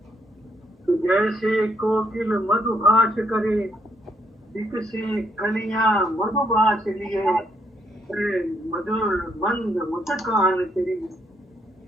तो जैसे कोकिल मधुभाष करे, से कलियां मधुभाष लिए, मधुर मंद मुस्कान तेरी,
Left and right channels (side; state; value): both; normal; correlation 0.72